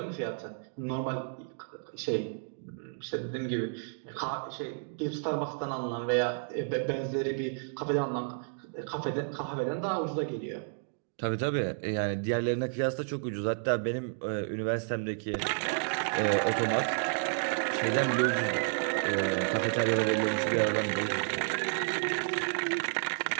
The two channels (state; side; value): silent; left; digital silence